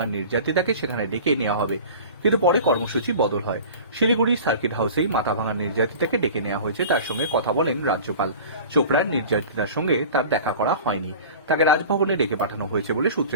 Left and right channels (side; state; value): both; inverted; correlation -0.39